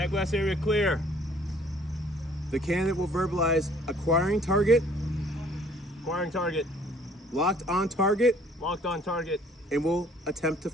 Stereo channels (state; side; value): normal; both; correlation 0.57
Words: blast area clear. The candidate will verbalize acquiring target, Acquiring target. locked on target, Locked on target. and will attempt to